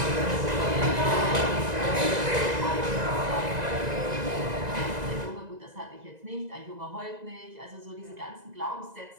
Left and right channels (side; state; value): left; late; 2.0 ms